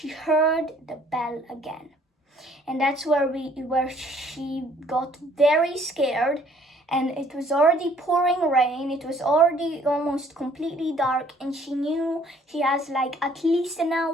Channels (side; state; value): both; normal; correlation 0.60